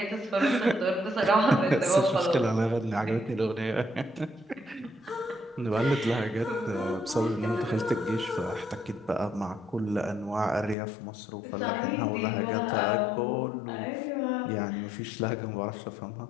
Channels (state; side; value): drops out; right; at 10.8 s